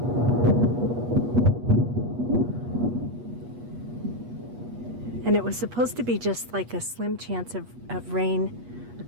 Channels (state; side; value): late; left; 8.3 ms